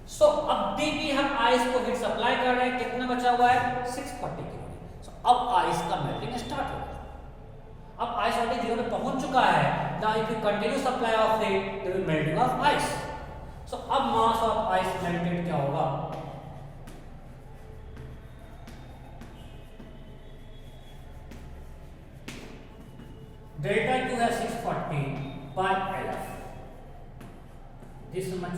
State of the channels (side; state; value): both; identical; correlation 1.00